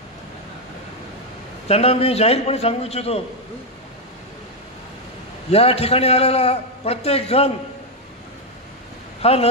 त्यांना मी जाहीरपणे सांगू इच्छितो या ठिकाणी आलेला प्रत्येक जण हा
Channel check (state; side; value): normal; both; correlation 0.03